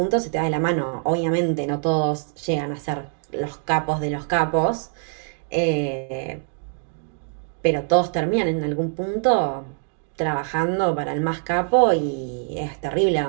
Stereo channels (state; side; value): silent; left; 63 dB below the other